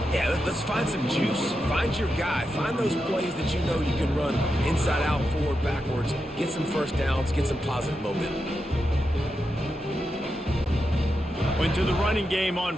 Yeah, let's find some juice. Find your guy. Find those plays that you know you can run inside out, forward, backwards. Get some first downs. Get some positive momentum. Went to the running game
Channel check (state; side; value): normal; both; correlation 0.87